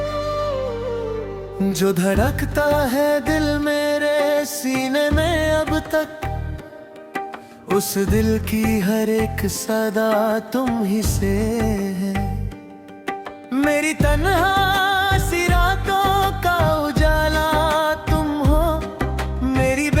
जो धड़कता है दिल मेरे सीने में अब तक, उस दिल की हर एक सदा तुम ही से है। मेरी तन्हा सी रातों का उजाला तुम हो। मेरी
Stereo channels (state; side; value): identical; both; correlation 1.00